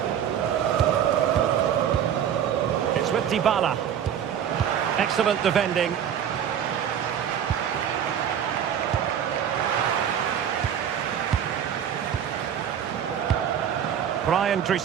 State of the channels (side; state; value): left; quieter; 9.1 dB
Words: It's with Dybala. Excellent defending. Brian